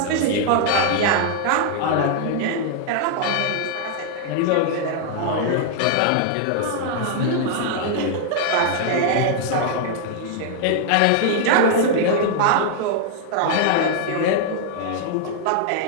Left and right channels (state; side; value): different; both; correlation -0.01